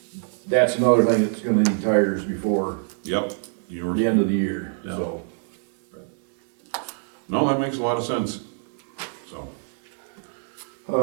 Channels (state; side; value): silent; left; digital silence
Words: that's another thing that's gonna need tires before yep, you were, the end of the year, so. no, that makes a lot of sense, so.